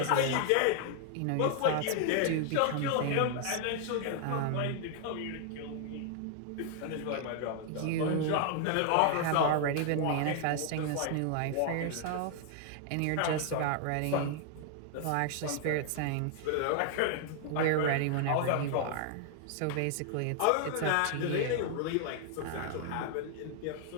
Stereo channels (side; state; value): both; different; correlation 0.00